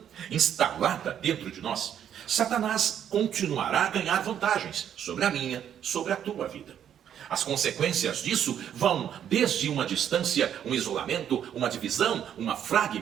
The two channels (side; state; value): left; quieter; 9.5 dB